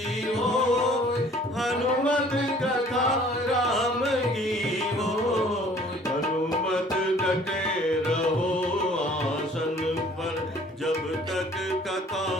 हो। हनुमत कथा राम की हो। हनुमत डटे रहो आसन पर जब तक कथा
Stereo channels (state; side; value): normal; both; correlation 0.54